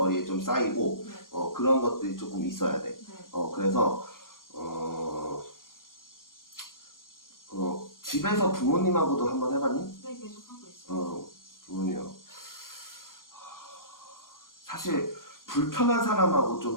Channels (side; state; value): right; late; 0.91 ms